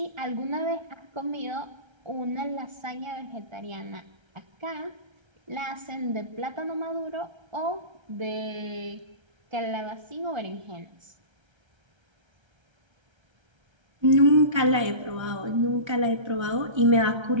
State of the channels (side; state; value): left; late; 1.3 ms